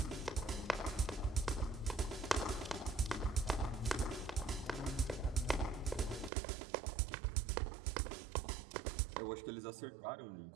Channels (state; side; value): drops out; left; at 6.3 s